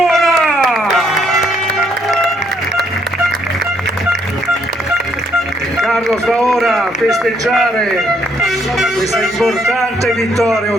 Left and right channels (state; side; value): normal; both; correlation 0.71